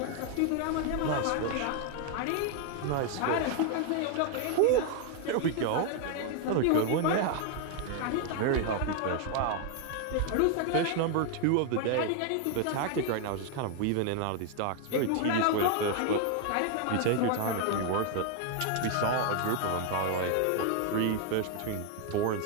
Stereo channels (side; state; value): both; different; correlation 0.00